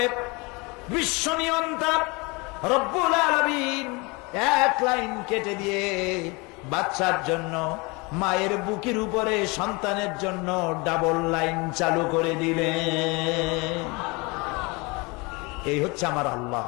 বিশ্ব নিয়ন্তা রব্বুল আলামিন এক লাইন কেটে দিয়ে বাচ্চার জন্য মায়ের বুকের উপরে সন্তানের জন্য ডাবল লাইন চালু করে দিলেন। এই হচ্ছে আমার আল্লাহ,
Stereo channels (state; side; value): quieter; right; 27.2 dB